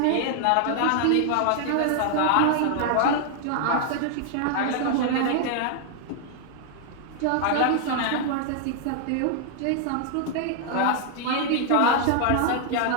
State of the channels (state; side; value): different; both; correlation 0.00